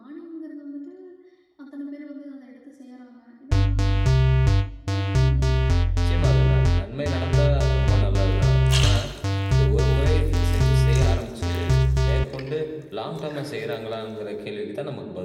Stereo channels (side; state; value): both; identical; correlation 1.00